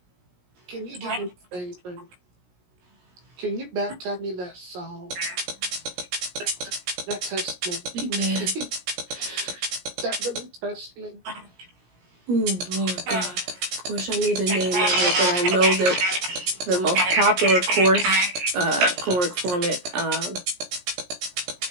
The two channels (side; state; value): left; late; 17 ms